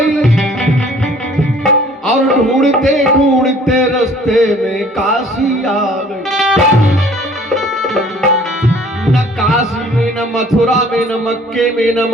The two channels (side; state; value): both; normal; correlation 0.54